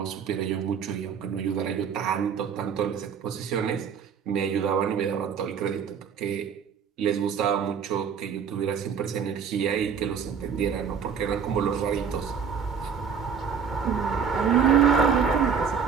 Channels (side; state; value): left; quieter; 6.9 dB